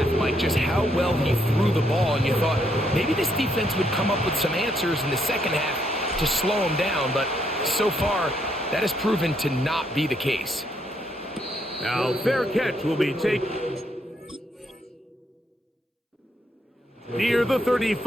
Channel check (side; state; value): both; normal; correlation 0.74